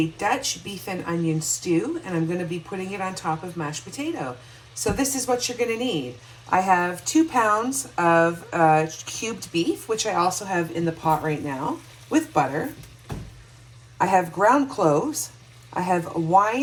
Dutch beef and onion stew, and I'm going to be putting it on top of mashed potato. So this is what you're going to need. I have 2 pounds of cubed beef, which I also have in the pot right now, with butter. I have ground cloves. I have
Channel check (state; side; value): identical; both; correlation 1.00